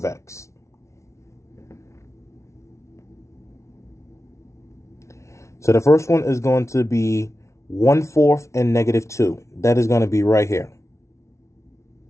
x. So the first one is going to be 1/4 and -2. That is going to be right here.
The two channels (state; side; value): late; right; 0.14 ms